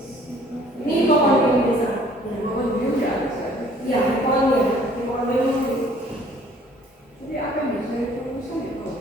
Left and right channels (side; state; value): both; normal; correlation 0.57